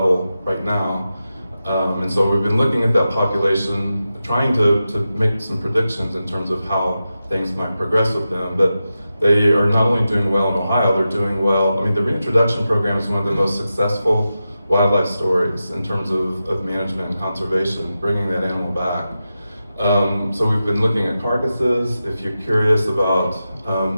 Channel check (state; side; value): inverted; both; correlation -0.91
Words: right now. And so we've been looking at that population, trying to make some predictions in terms of how things might progress with them. But they are not only doing well in Ohio, they're doing well. I mean, the reintroduction program is one of the most successful wildlife stories in terms of management and conservation, bringing that animal back. So we've been looking at carcasses. If you're curious about